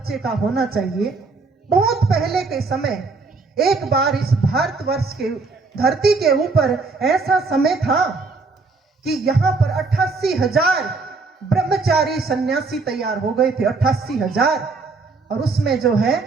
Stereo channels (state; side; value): quieter; left; 4.1 dB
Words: का होना चाहिए। बहुत पहले के समय, एक बार इस भारतवर्ष के धरती के ऊपर ऐसा समय था कि यहाँ पर 88,000 ब्रह्मचारी सन्यासी तैयार हो गए थे, 88,000। और उसमें जो है